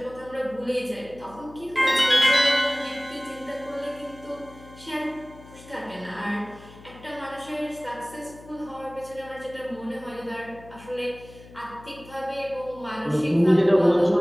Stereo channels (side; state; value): left; noise; hum, 20 dB below the sound